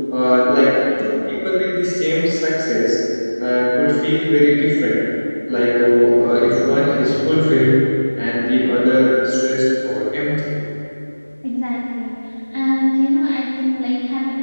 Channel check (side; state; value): both; inverted; correlation -1.00